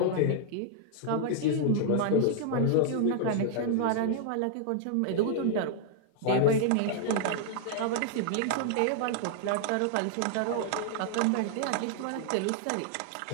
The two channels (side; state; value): both; different; correlation -0.01